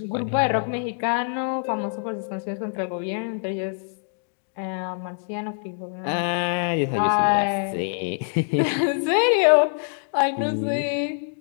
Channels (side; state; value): right; silent; 62 dB below the other